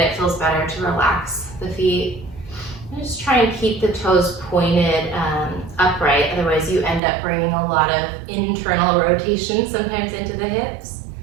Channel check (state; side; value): drops out; left; at 7.0 s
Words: feels better to relax the feet. And just try and keep the toes pointed upright, otherwise you end up bringing a lot of internal rotation sometimes into the hips.